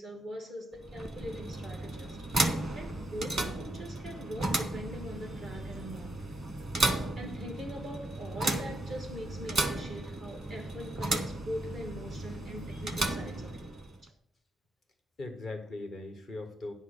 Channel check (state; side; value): normal; both; correlation 0.78